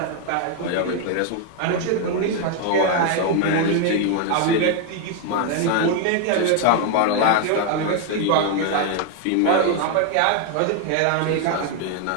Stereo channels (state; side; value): different; both; correlation 0.01